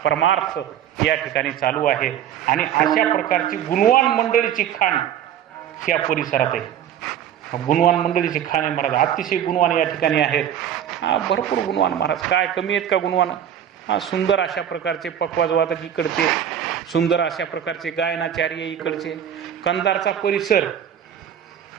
परमार्थ या ठिकाणी चालू आहे. आणि अशा प्रकारची गुणवान मंडळीची खाण या परिसरात आहे. गुणवान मंडळीची खाण आहे महाराज, अतिशय गुणवान या ठिकाणी आहेत. भरपूर गुणवान महाराज, काय कमी आहेत का गुणवान. सुंदर अशा प्रकारचे पक्वाजवादक इकडचे, सुंदर अशा प्रकारचे गायनाचार्य इकडचे. कंधारचा परिसर,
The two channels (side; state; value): left; quieter; 9.8 dB